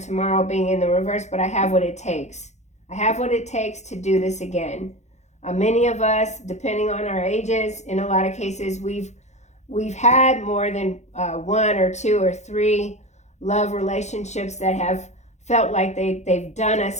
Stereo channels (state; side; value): late; right; 0.33 ms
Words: being in the reverse, but I have what it takes. I have what it takes to do this again. Many of us, depending on our ages, in a lot of cases, we've had more than 1 or 2 or 3 love relationships that have felt like they've done us